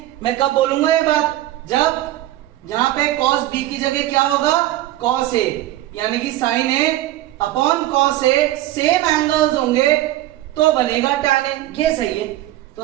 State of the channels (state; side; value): quieter; left; 15.2 dB